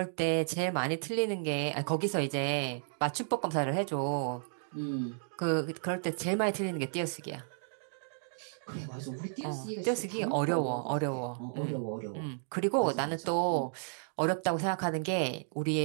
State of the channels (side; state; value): left; silent; digital silence